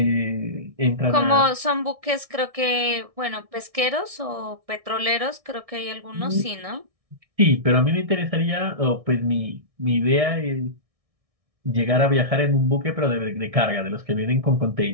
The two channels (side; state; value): left; late; 1.6 ms